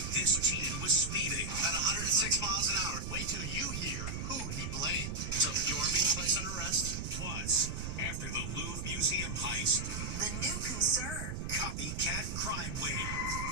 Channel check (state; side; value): noise; right; rumble, 4 dB below the sound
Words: this teen was speeding. At 106 miles an hour. Wait till you hear who he blamed. So you are being placed under arrest? Plus, after the Louvre Museum heist, The new concern. copycat crime wave.